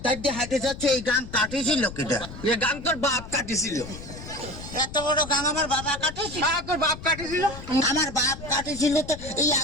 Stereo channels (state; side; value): noise; left; rumble, 13 dB below the sound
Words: ধার দিয়ে হাঁটে যাচ্ছি এই গান কাটিয়েছিল কিটা? এ গান তোর বাপ কাটিছিল। এত বড় গান আমার বাবা কাটেছিল? তোর বাপ কাটিছিল? আমার বাপ কাটেছিল তো এই